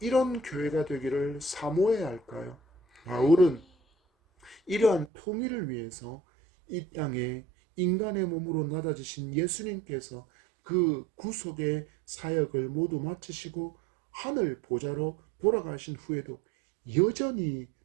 교회가 되기를 사모해야 할까요? 바울은 이러한 통일을 위해서 이 땅에 인간의 몸으로 낮아지신 예수님께서 그 구속의 사역을 모두 마치시고 하늘 보좌로 돌아가신 후에도 여전히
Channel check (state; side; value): drops out; left; at 5.1 s